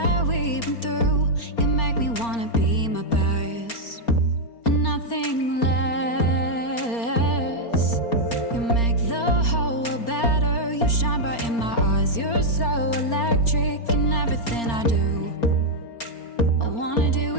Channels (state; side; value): late; right; 4.3 ms